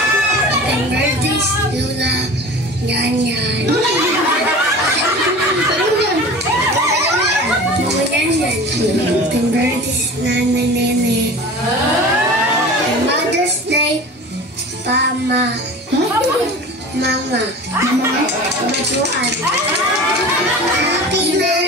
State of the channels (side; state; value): both; normal; correlation 0.37